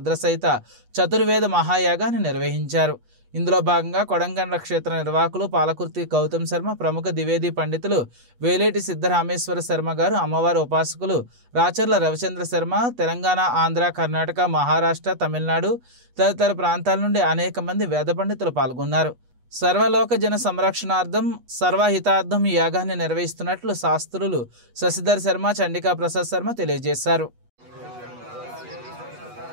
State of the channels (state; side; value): late; left; 8.2 ms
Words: చతుర్వేద మహాయాగాన్ని నిర్వహించారు. ఇందులో భాగంగా కొడంగండ్ల క్షేత్ర నిర్వాహకులు పాలకుర్తి గౌతమ్ శర్మ, ప్రముఖ ద్వివేది పండితులు వేలేటి సిద్ధరామేశ్వర శర్మ గారు, అమ్మవారి ఉపాసకులు రాచర్ల రవిచంద్ర శర్మ, తెలంగాణ, ఆంధ్ర, కర్ణాటక, మహారాష్ట్ర, తమిళనాడు తదితర ప్రాంతాల నుండి అనేక మంది వేద పండితులు పాల్గొన్నారు. సర్వలోక జన సంరక్షణార్థం సర్వహితార్థం ఈ యాగాన్ని నిర్వహిస్తున్నట్లు శాస్త్రులు శశిధర్ శర్మ, చండికా ప్రసాద్ శర్మ తెలియజేశారు.